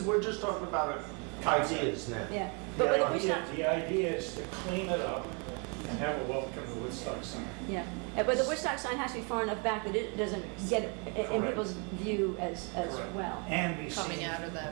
We're just talking about ideas now. Yeah, but the The Woodstock. idea- the idea is to clean it up and have a welcome to Woodstock sign. Yeah, but the Woodstock sign has to be far enough back that it doesn't get in Correct. people's view as Correct. well. And be Coming seen, out of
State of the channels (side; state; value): left; quieter; 35.1 dB